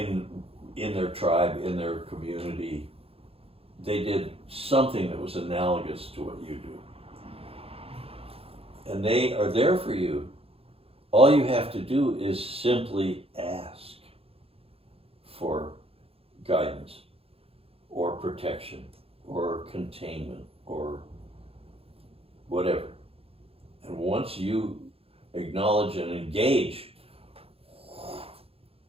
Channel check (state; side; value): late; left; 0.28 ms